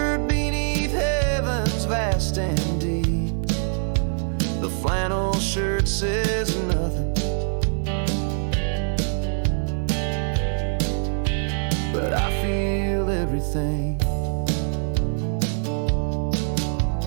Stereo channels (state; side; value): silent; left; digital silence